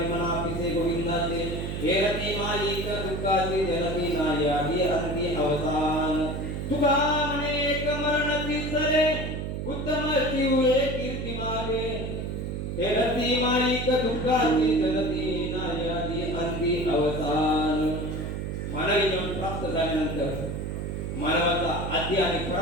पिसे गोविंदाचे हे रती मालिक दुःखाची जनती नाही आती अंती अवतान तुका अनेक मरणती चले उत्तम जीवे कीर्ती मागे हे रती मालिक दुःखाची जनती नाही आती अंती अवतान. मानवी जीवन प्राप्त झाल्यानंतर मानवाचा आद्य आणि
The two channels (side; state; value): right; noise; hum, 4 dB below the sound